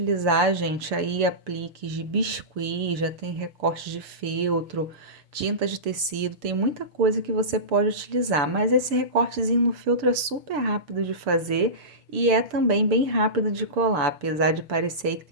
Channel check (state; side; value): late; left; 6.9 ms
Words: gente, aí apliques de biscuit, já tem recorte de feltro, tinta de tecido, tem muita coisa que você pode utilizar, mas esse recortezinho no feltro é super rápido de fazer e é também bem rápido de colar, apesar de parecer que